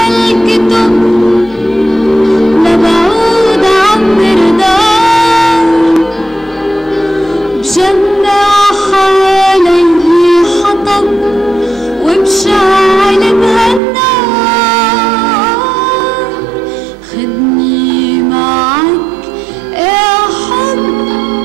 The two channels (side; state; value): left; drops out; at 13.8 s